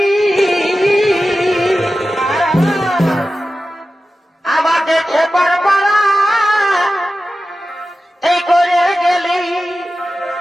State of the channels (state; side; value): normal; both; correlation 0.94